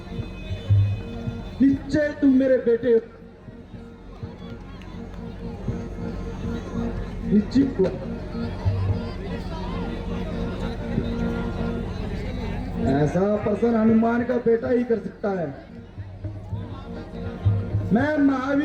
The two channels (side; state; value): both; identical; correlation 1.00